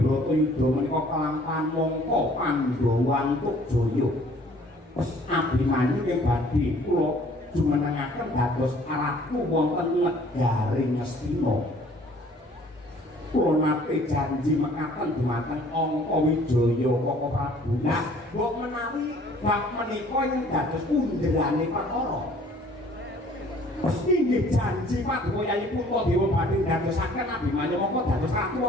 menika kelampahan mongko Pandhawa antuk jaya Abimanyu ing badhe kula jumenengaken dados ratu wonten negari Ngastina kula nate janji mekaten dumateng Angka Wijaya Kaka Prabu nah mbok menawi bab menika ing dados underane perkara inggih janji Paduka Yayi Puntadewa badhe dadosaken Abimanyu mongko dados ratu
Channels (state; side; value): normal; both; correlation 0.55